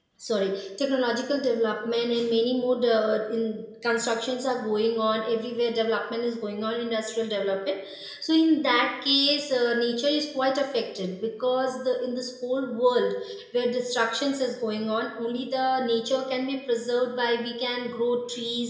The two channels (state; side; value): identical; both; correlation 1.00